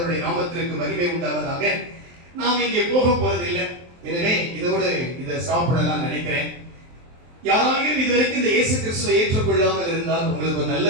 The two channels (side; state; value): left; late; 23 ms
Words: நாமத்திற்கு மகிமை உண்டாவதாக. நாம் இங்கே போக போறதில்லை, எனவே இதோடு இதை ஸ்டாப் பண்ணலாம் நினைக்கிறேன். யாராலும் இதுவரைக்கும் இந்த இயேசு கிறிஸ்துவை ஏற்றுக்கொள்ளாமல் இருந்தால் உங்களுக்கு ஒரு நல்ல